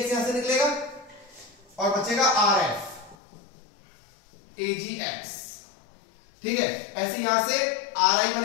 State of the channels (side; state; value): right; drops out; at 3.2 s